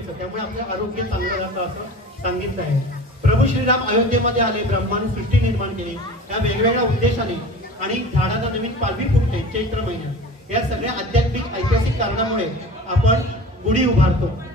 त्यामुळे आपलं आरोग्य चांगलं राहतं असं सांगितलं आहे. प्रभू श्रीराम अयोध्येमध्ये आले, ब्रह्माने सृष्टी निर्माण केली या वेगवेगळ्या उद्देशाने आणि झाडाला नवीन पालवी फुटते चैत्र महिन्यात. या सगळ्या आध्यात्मिक ऐतिहासिक कारणामुळे आपण गुढी उभारतो.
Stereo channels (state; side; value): normal; both; correlation 0.38